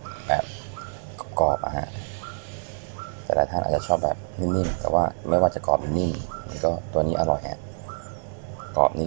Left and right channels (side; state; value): left; silent; digital silence